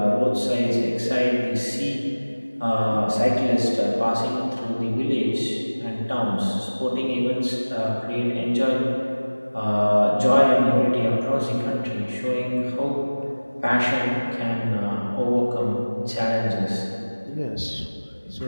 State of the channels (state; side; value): inverted; both; correlation -1.00